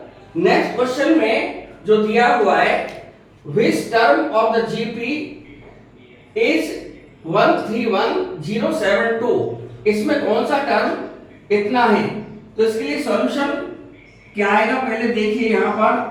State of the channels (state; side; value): identical; both; correlation 1.00